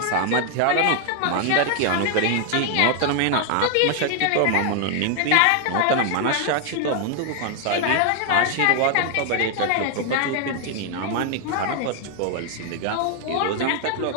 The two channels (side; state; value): both; different; correlation 0.00